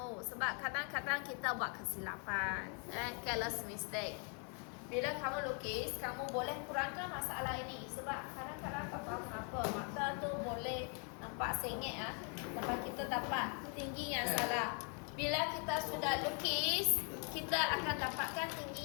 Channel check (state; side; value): quieter; right; 38.7 dB